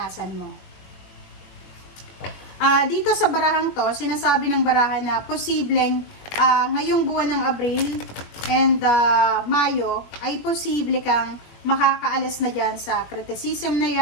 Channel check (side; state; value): right; late; 21 ms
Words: mo. Dito sa barahang to, sinasabi ng barahan na posibleng ngayong buwan ng Abril and Mayo, ay posible kang makakaalis na dyan sa criticism na